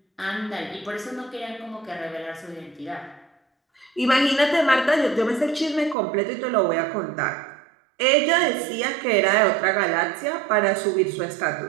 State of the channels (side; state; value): left; drops out; at 6.0 s